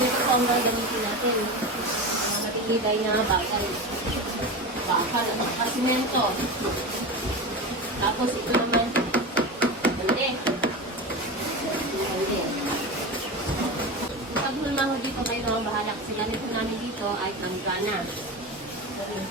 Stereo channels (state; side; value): normal; both; correlation 0.24